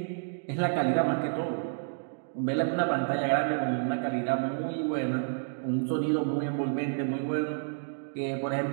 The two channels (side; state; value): left; silent; digital silence